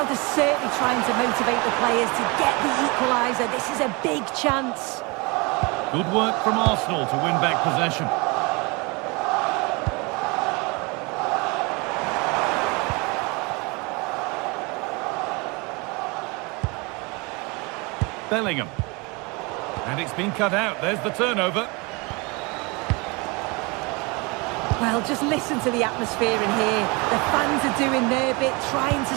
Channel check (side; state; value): left; quieter; 27.9 dB